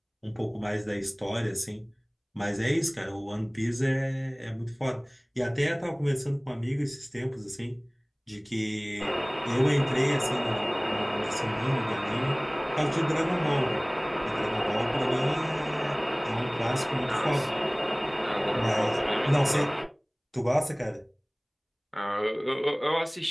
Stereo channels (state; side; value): identical; both; correlation 1.00